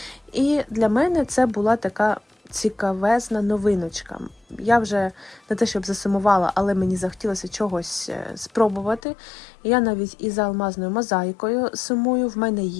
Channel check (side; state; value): right; drops out; at 9.0 s